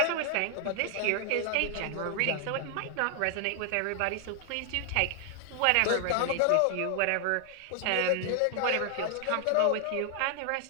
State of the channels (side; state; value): both; different; correlation 0.00